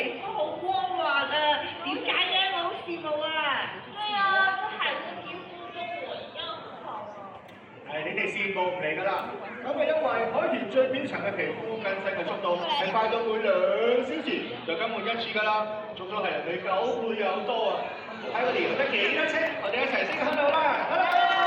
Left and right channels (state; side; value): identical; both; correlation 1.00